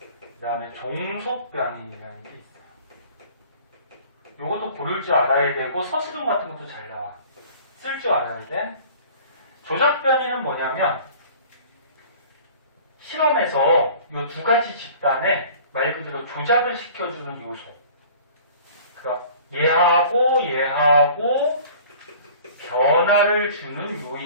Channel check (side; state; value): both; inverted; correlation -0.47